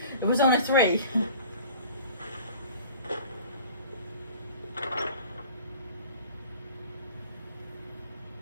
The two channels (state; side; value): inverted; both; correlation -0.45